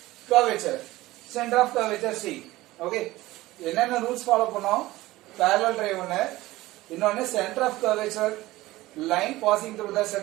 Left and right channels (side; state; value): left; quieter; 17.9 dB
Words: curvature, center of curvature C. Okay, என்னென்ன rules follow பண்ணோம்? Parallel ray ஒன்னு, இன்னொன்னு center of curvature, line passing through the